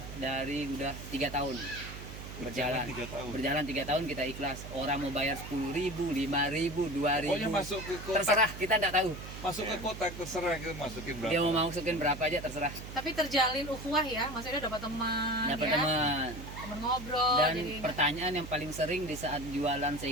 dari udah 3 tahun berjalan. 3 tahun. Berjalan 3 tahun kita ikhlas. Orang mau bayar 10.000, 5.000, 2.000. Pokoknya masuk ke kotak, Terserah, kita tidak tahu. masuk ke kotak terserah kita masukin berapa. Dia mau masukin berapa aja terserah. Tapi terjalin ukhuwah ya, maksudnya dapat teman, Dapat ya? teman. Teman ngobrol. Dan jadi pertanyaan yang paling sering di saat jualan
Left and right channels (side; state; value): right; noise; hum, 11 dB below the sound